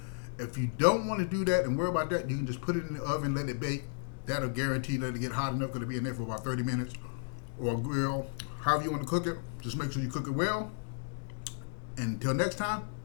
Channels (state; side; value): silent; right; digital silence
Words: If you don't want to do that and worry about that, you can just put it in the oven, let it bake. That'll guarantee that it get hot enough. Going to be in there for about 30 minutes, or grill, however you want to cook it. Just make sure you cook it well. And until next time,